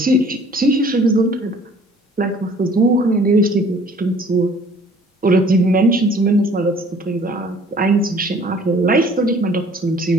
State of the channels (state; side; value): normal; both; correlation 0.54